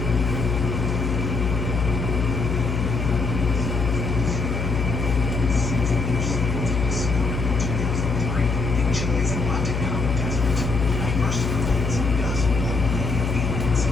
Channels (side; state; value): left; noise; hum, 2 dB below the sound